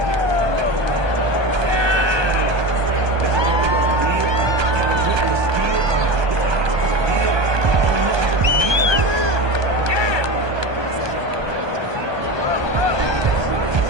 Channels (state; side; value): late; left; 1.2 ms